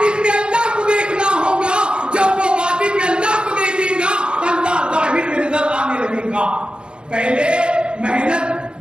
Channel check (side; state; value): left; late; 0.053 ms